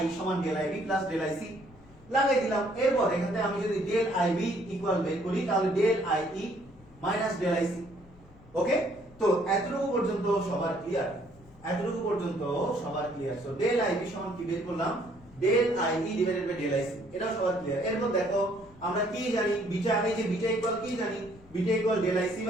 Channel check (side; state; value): left; noise; rumble, 24 dB below the sound